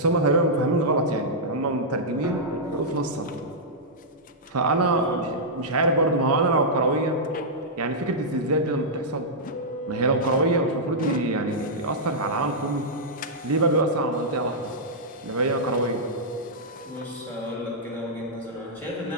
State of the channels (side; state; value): both; normal; correlation -0.09